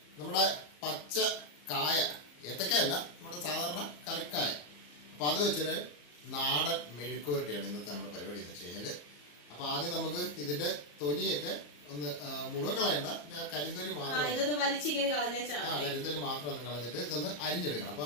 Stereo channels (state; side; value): late; right; 34 ms